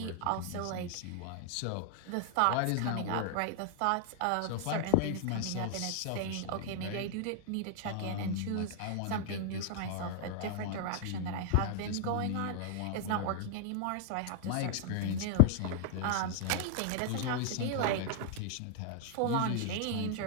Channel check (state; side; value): different; both; correlation -0.01